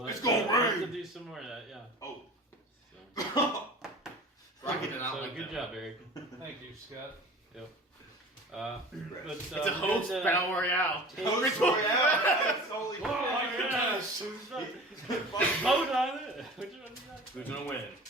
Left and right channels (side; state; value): both; normal; correlation 0.39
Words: It's I gonna have to rain. do some more of that, yeah. Oh. So, Rocky did not so like good that. job, Eric. Thank you, Scott. Yep. But, It's a host good, battle royale. Host Royale. That's totally. Oh, yes. Vote on it. Which one is that? Who's gonna win?